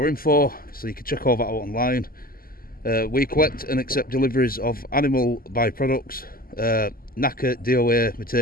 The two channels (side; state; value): right; late; 0.42 ms